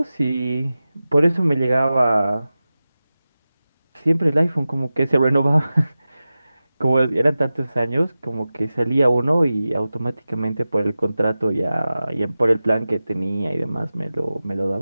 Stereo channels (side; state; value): both; inverted; correlation -0.95